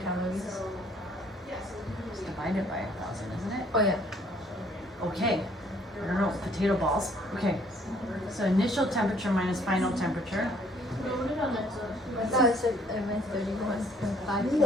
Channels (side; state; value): both; normal; correlation 0.61